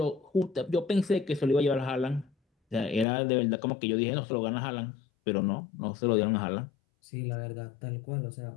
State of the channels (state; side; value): drops out; right; at 3.1 s